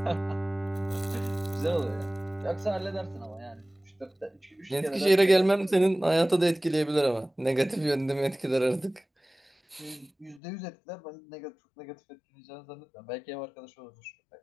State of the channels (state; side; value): drops out; right; at 10.4 s